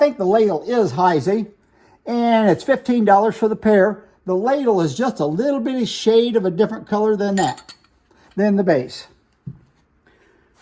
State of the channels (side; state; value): both; identical; correlation 1.00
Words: ladle is Heisey, and it's $15 for the pair. The ladle is just a little bitty shade of a different color than the base.